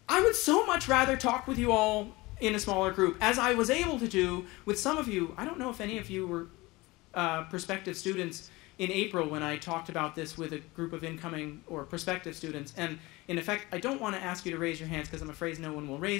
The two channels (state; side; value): quieter; right; 21.9 dB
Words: I would so much rather talk with you all in a smaller group, as I was able to do with some of you. I don't know if any of you were prospective students in April when I talked about this with a group of incoming or prospective students. And in effect, I don't want to ask you to raise your hands because I'm afraid no one will